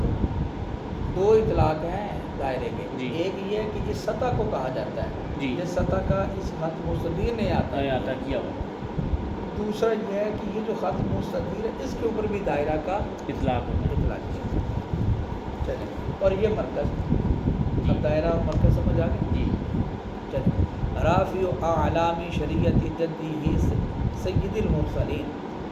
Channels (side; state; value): both; identical; correlation 1.00